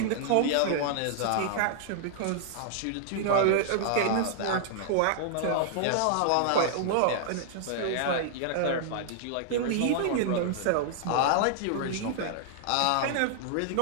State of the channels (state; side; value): different; both; correlation -0.01